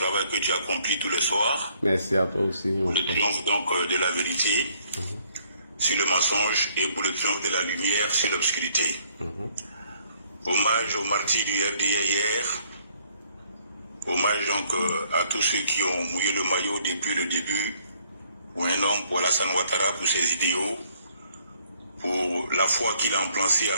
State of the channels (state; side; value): inverted; both; correlation -0.65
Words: que tu accomplis tous les soirs. Merci à toi aussi. Pour le triomphe donc de la vérité sur le mensonge et pour le triomphe de la lumière sur l'obscurité. Hommage aux martyrs du RDR hier. Hommage donc à tous ceux qui ont mouillé le maillot depuis le début. Pour un homme, pour Alassane Ouattara, pour ses idéaux, pour la foi qu'il a implanté à